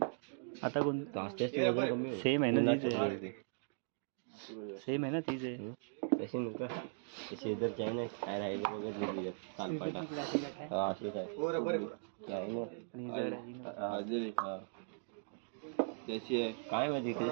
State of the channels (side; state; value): left; silent; digital silence